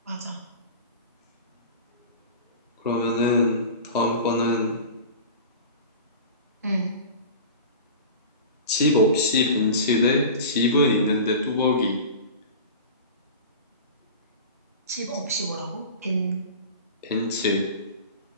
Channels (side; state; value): both; inverted; correlation -0.34